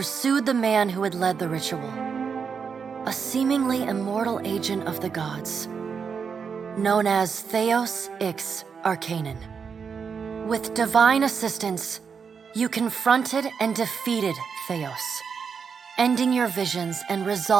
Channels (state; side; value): quieter; left; 6.2 dB